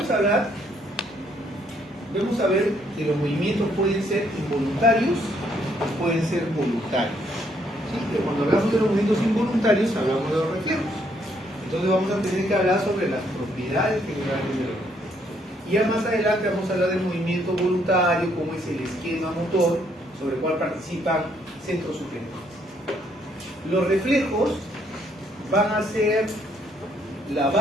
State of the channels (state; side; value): normal; both; correlation 0.70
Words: a ver que los movimientos pueden ser involuntarios o pueden ser voluntarios. ¿Sí? Pero cuando hablamos de los movimientos involuntarios, hablamos de los reflejos. Entonces vamos a tener que hablar sobre las propiedades generales de los reflejos. Y ya más adelante vamos a hablar del movimiento voluntario, cómo es el esquema motor, sobre el cual participan centros superiores. Los reflejos van a ser la